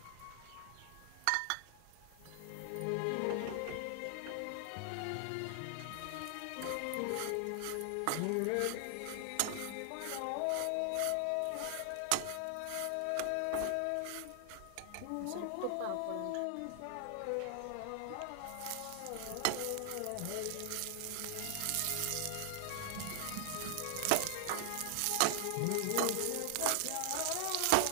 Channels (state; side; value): different; both; correlation 0.00